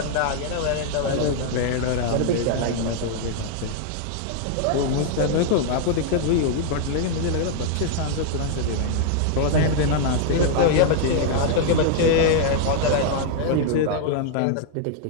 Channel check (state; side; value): different; both; correlation 0.00